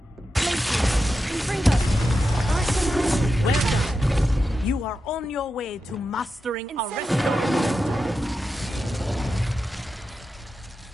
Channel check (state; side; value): normal; both; correlation 0.89